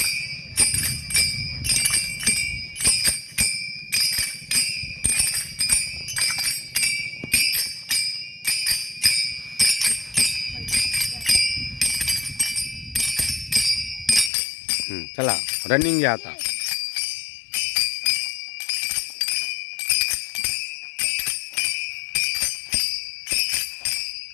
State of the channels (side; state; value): right; drops out; at 14.3 s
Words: चला रनिंग घ्या आता.